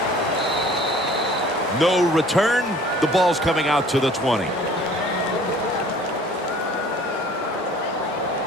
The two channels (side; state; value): both; normal; correlation 0.50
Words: No return. The ball's coming out to the 20.